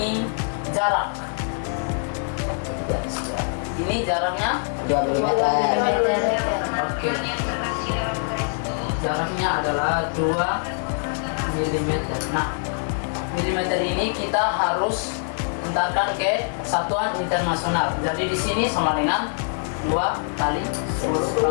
jarak. Ini jaraknya 2 mm. oke. Jaraknya adalah 2 mm. Nah, milimeter ini kita harus entarkan ke satuan internasional. Jadi di sini sama dengan 2 kali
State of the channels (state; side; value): silent; right; 58 dB below the other